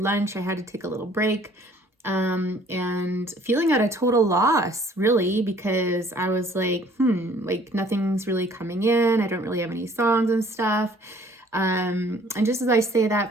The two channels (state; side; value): normal; both; correlation 0.57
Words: I had to take a little break and feeling at a total loss, really, because I was like nothing's really coming in. I don't really have any songs and stuff. And just as I say